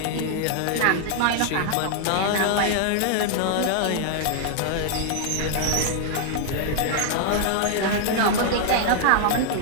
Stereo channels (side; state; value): both; different; correlation 0.00